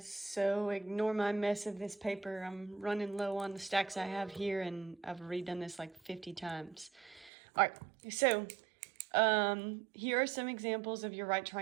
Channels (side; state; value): left; drops out; at 7.3 s